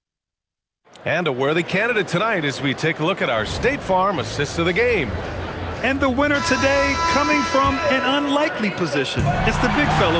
And a worthy candidate tonight as we take a look at our State Farm assist of the game. And the winner today coming from an unlikely position. It's the big fella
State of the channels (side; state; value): both; identical; correlation 1.00